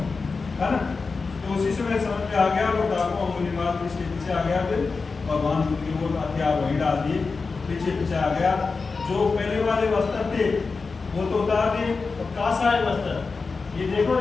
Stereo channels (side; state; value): right; quieter; 4.4 dB